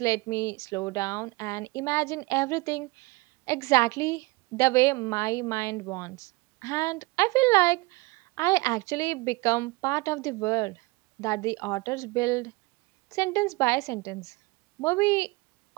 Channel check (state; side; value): quieter; left; 23.5 dB